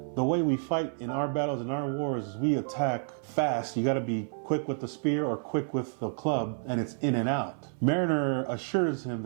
the way we fight in our battles, in our wars, is we attack fast. You gotta be quick with the spear or quick with the club, and it's in and out. Mariner assures him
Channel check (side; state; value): left; silent; 58 dB below the other